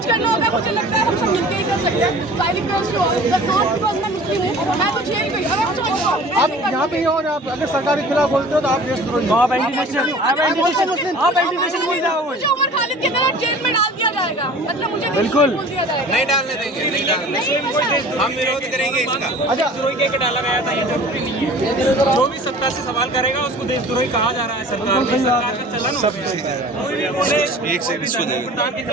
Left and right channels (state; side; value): normal; both; correlation 0.44